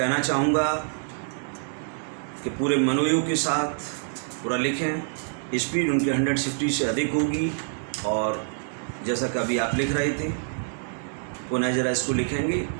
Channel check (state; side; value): silent; left; digital silence